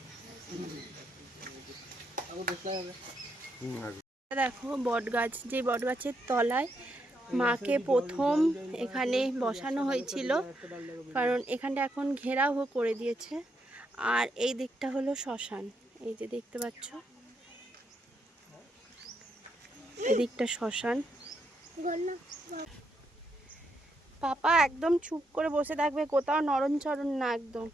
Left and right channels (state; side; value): normal; both; correlation 0.79